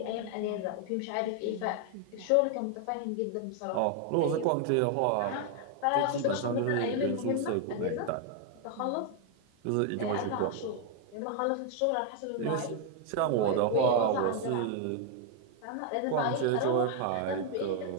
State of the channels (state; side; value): different; both; correlation 0.01